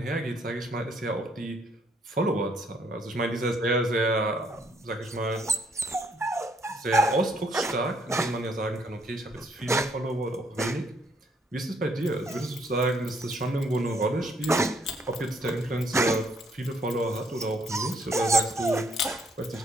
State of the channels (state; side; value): normal; both; correlation 0.69